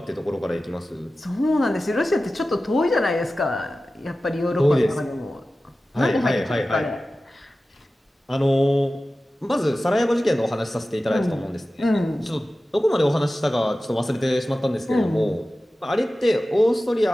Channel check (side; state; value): both; normal; correlation 0.95